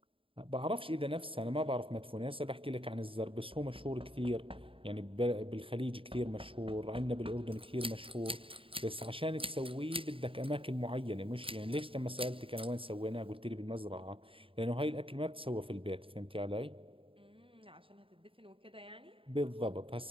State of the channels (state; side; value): late; left; 0.26 ms